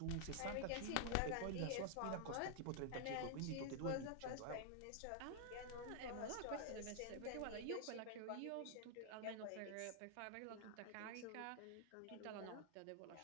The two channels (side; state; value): both; different; correlation 0.00